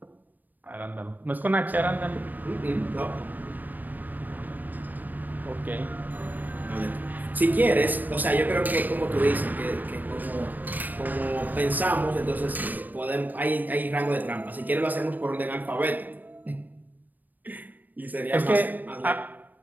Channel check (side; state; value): left; late; 0.087 ms